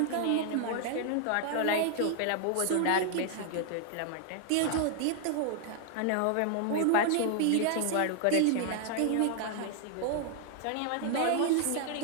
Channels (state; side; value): different; both; correlation 0.00